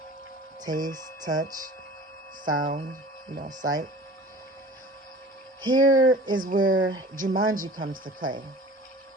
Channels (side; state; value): both; normal; correlation 0.42